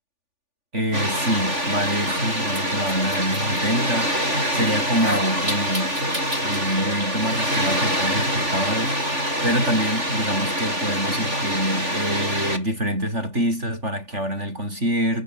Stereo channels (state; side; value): late; left; 3.4 ms